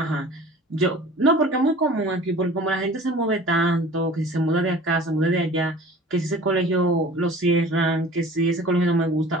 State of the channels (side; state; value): both; normal; correlation 0.44